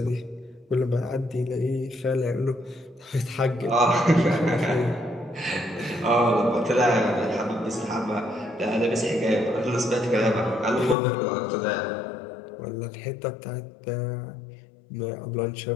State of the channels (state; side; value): drops out; right; at 11.0 s